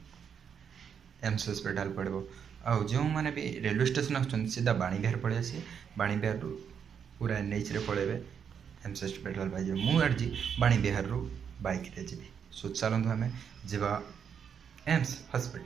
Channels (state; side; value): quieter; left; 7.5 dB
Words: एम्स हॉस्पिटल पड़ो। आउ जो मैंने भी रेलवे स्टेशन आसुँच सीधा बाणीबिहार पलि आसी बाणीबिहार पूरा एनएच रे पलैबे एम्स हॉस्पिटल पाई मुझे बाणीबिहार बाइक रे जी। सो चलतु आम जा एम्स